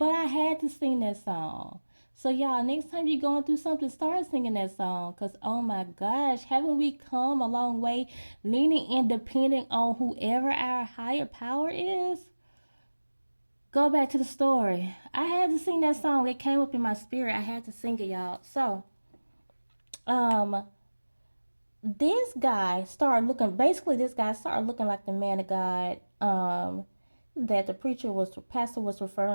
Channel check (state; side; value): inverted; both; correlation -1.00